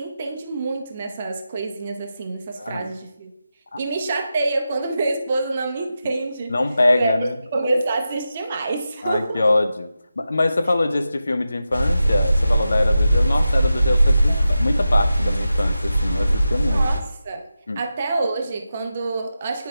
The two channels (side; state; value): both; inverted; correlation -0.91